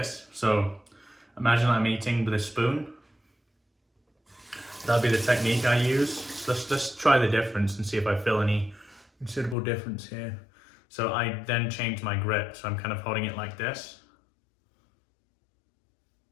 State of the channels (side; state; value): right; drops out; at 9.6 s